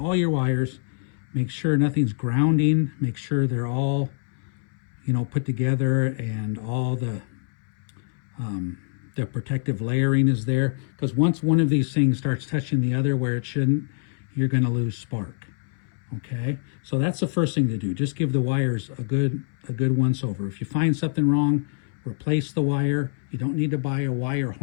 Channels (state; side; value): silent; right; 62 dB below the other